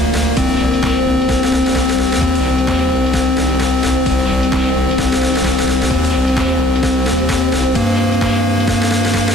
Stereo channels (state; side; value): normal; both; correlation 0.59